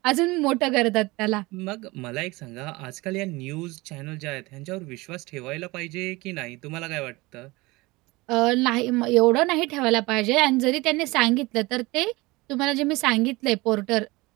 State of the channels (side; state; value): left; quieter; 22.4 dB